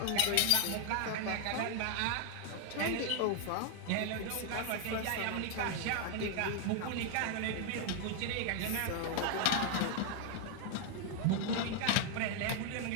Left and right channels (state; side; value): different; both; correlation 0.00